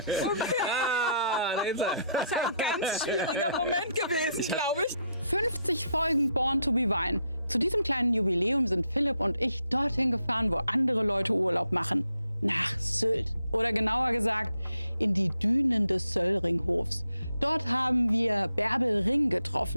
Okay. Da ist er. Das ist ein ganz schwieriger Moment gewesen, glaube ich. 50 Folgen Born to be Wine. Zu diesem kleinen Jubiläum sind Philipp und ich dorthin gefahren, wo andere Leute Urlaub machen. Nach Sylt. Oder genauer gesagt, in die Dünen des Söllringhofs. Dort haben wir Bärbel Ring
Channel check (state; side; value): inverted; both; correlation -0.75